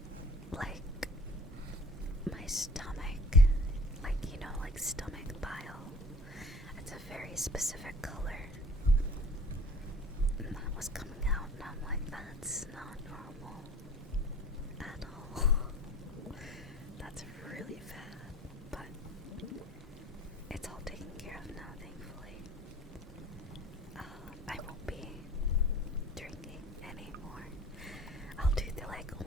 like my stomach, like, you know, like stomach bile, it's a very specific color, and that was coming out, and I'm like, that's not normal at all. That's really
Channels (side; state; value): both; normal; correlation 0.45